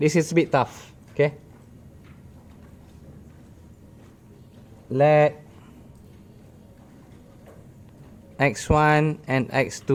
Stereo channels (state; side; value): identical; both; correlation 1.00